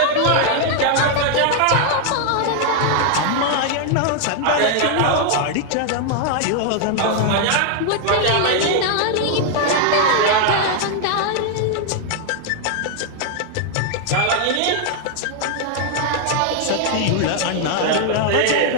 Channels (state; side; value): different; both; correlation 0.00